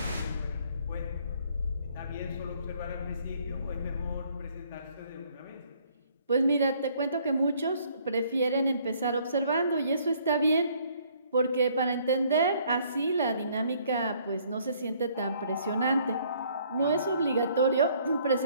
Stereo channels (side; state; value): both; inverted; correlation -0.63